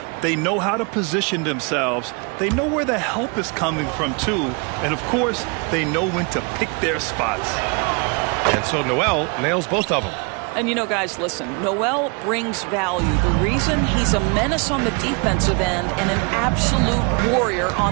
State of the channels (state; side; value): quieter; left; 32.8 dB